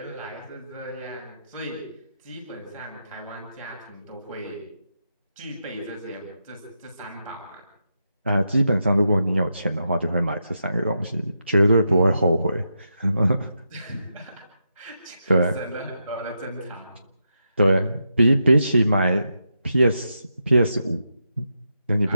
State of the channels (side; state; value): both; inverted; correlation -0.85